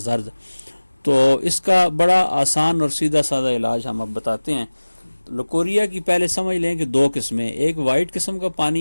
تو اس کا بڑا آسان اور سیدھا سادہ علاج ہم اب بتاتے ہیں۔ لیکوریا کی پہلے سمجھ لیں کہ دو قسمیں، ایک وائٹ قسم کا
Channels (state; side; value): inverted; both; correlation -1.00